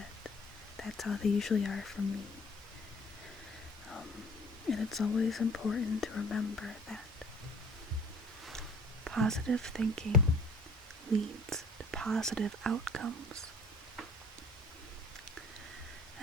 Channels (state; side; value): normal; both; correlation 0.52